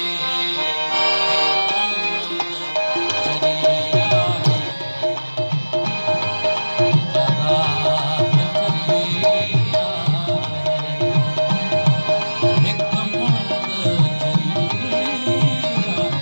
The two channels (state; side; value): inverted; both; correlation -1.00